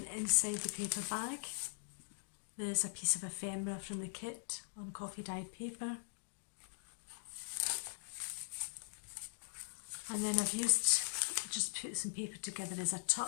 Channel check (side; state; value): right; silent; digital silence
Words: inside the paper bag, there's a piece of ephemera from the kit on coffee dyed paper. And then I've just put some paper together as a